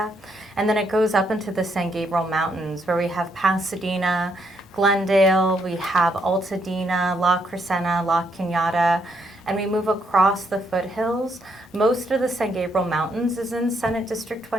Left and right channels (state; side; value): normal; both; correlation 0.75